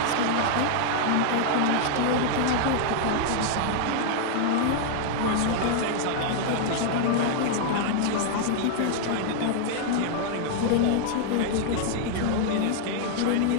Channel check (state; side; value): different; both; correlation 0.00